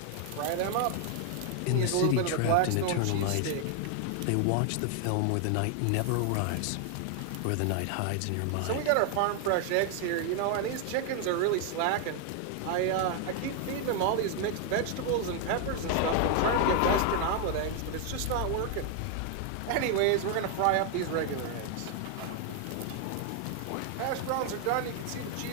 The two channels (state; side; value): different; both; correlation 0.00